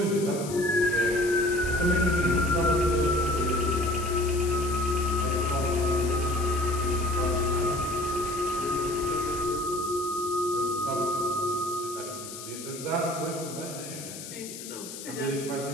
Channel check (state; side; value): noise; left; hiss, 11 dB below the sound